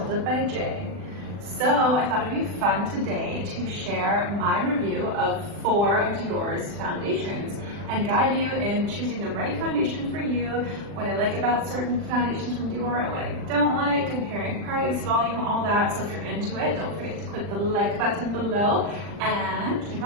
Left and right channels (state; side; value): late; left; 40 ms